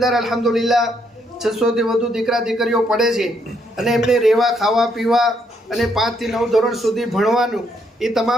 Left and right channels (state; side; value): normal; both; correlation 0.73